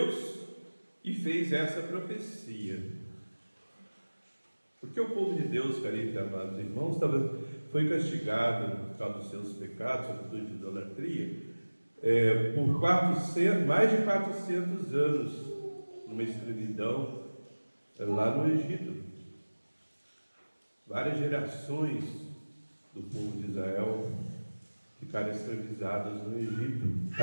e fez essa profecia. Porque o povo de Deus, caríssimos e amados irmãos, foi castigado por causa dos seus pecados, sobretudo de idolatria, por mais de 400 anos, numa escravidão lá no Egito. Várias gerações do povo de Israel ficaram escravizadas no Egito,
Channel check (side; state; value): both; inverted; correlation -1.00